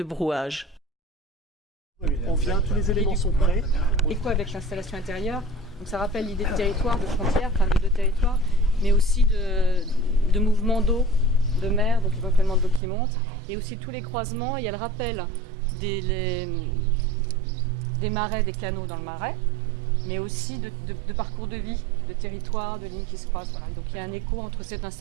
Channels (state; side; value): drops out; left; at 12.8 s